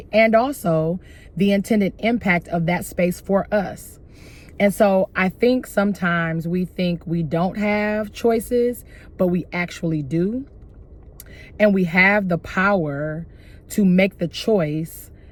And also the intended impact of that space for us. And so I think sometimes we think we don't have choices, but we actually do. And we have the power to make the choice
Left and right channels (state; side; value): identical; both; correlation 1.00